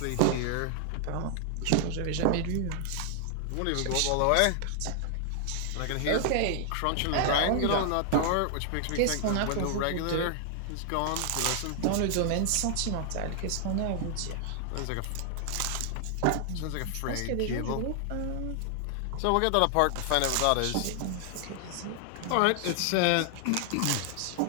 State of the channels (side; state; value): both; different; correlation 0.00